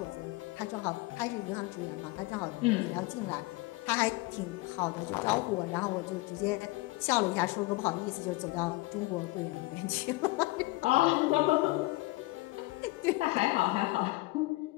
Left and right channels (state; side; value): quieter; right; 22.2 dB